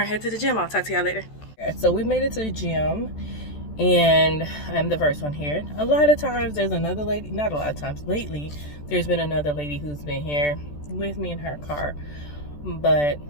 and head to the gym. I'll talk to y'all later. So we made it to the gym, and I'm the first one here. A lot of times there's another lady, not a lot of times, lately there's been another lady who's been here with me in her car. But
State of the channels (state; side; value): late; right; 14 ms